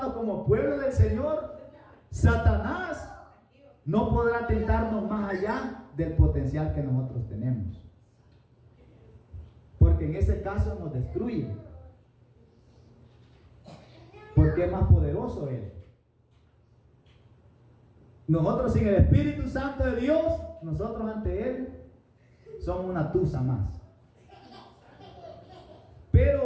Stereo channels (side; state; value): both; identical; correlation 1.00